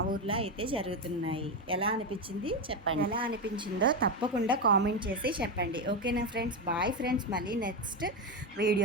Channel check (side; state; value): both; normal; correlation 0.11